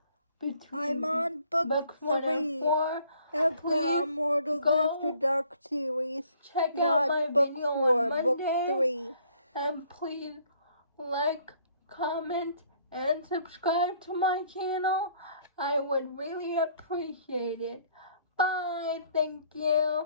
between I'm on book 3 4, of the Immortals After Dark series. Check Not out my book video 4, on Monday, book 3. and please like, comment, and subscribe to my channel. I would really appreciate it. Bye. Thank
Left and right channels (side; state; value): both; inverted; correlation -0.61